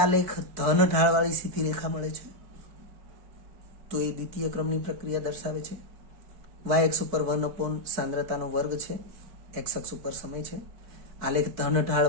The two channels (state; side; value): late; left; 4.6 ms